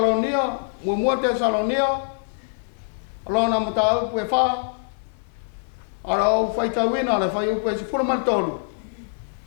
mua Tesalonia, alona mata au pue wha, ara au whaitawina le whai upe se fura martolu.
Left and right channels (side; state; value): right; silent; digital silence